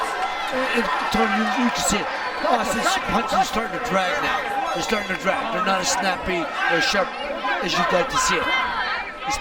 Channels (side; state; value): both; identical; correlation 1.00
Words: Tony, you can see it. Austin's punches are starting to drag now. They're starting to drag. They're not as snappy or sharp as you'd like to see it. He's